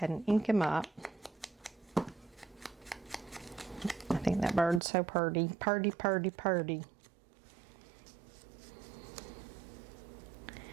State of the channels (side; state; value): left; drops out; at 4.8 s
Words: and ink him up. I think that bird's so purty. Purty, purty, purty.